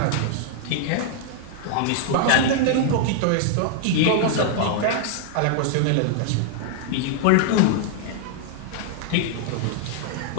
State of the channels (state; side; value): different; both; correlation 0.00